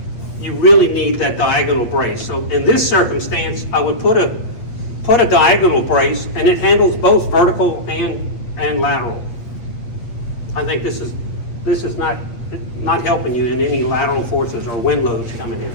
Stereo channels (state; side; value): late; right; 8.4 ms